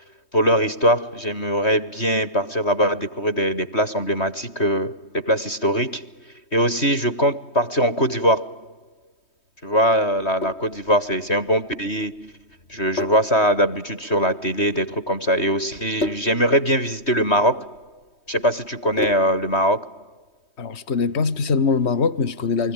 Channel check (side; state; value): right; late; 3.2 ms